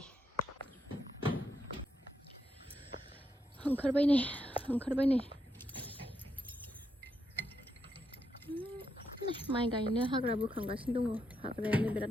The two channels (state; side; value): normal; both; correlation 0.81